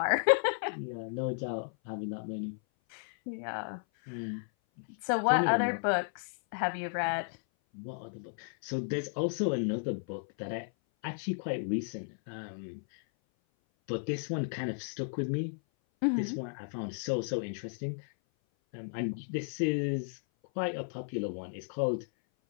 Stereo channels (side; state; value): right; silent; 55 dB below the other